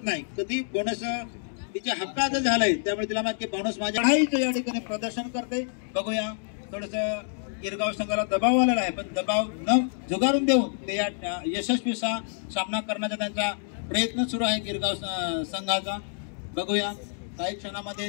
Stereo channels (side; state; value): right; silent; digital silence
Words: नाही. कधी बोनस तिच्या हक्कात झालंय त्यामुळे तिला माहिती बोनस माझ्या चढाईचं या ठिकाणी प्रदर्शन करते. बघूया थोडस गिरगाव संघाला दबाव आलेला आहे पण दबाव न झुगारून देऊन ते या यशस्वी सामना करण्याचा त्यांचा प्रयत्न सुरू आहे गिरगाव संघाचा. बघूया काही